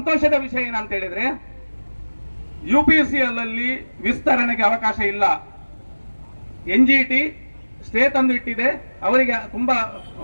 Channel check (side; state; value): both; inverted; correlation -1.00